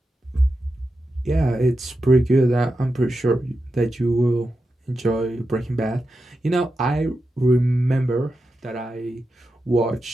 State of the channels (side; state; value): both; normal; correlation 0.89